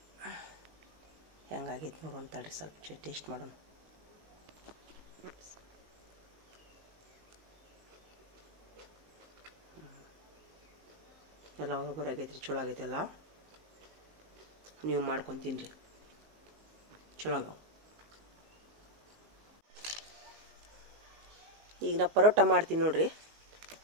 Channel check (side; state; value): left; late; 19 ms